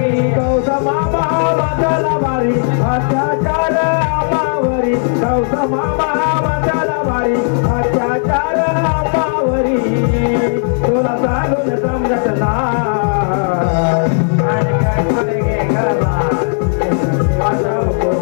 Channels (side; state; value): right; silent; digital silence